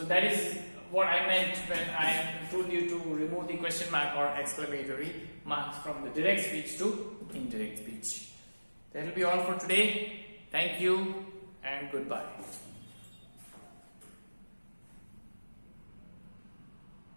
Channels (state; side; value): inverted; both; correlation -1.00